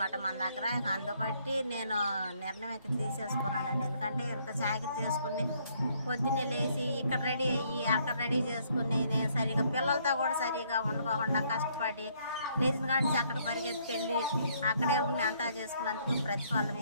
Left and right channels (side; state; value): both; inverted; correlation -0.67